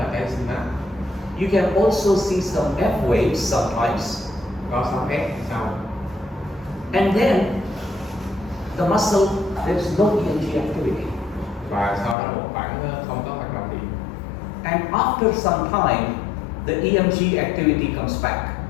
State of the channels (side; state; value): right; drops out; at 12.2 s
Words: cái synapse. You can also see some F waves sometimes. Có sóng F sau. And then the muscle, there's no EMG activity. Và sau đó một khoảng không có hoạt động điện. And after some time, the EMG activity comes back.